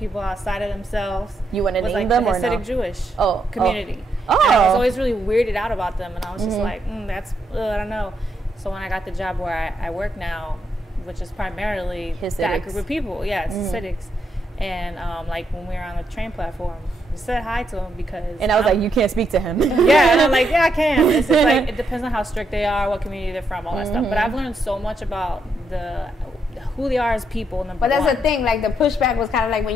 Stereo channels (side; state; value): both; normal; correlation 0.78